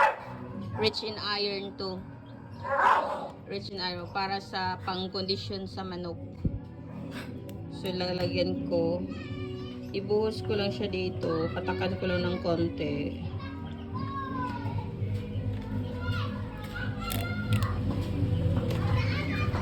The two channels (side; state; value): both; identical; correlation 1.00